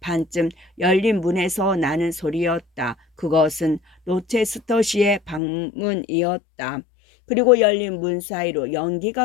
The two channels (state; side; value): drops out; right; at 5.4 s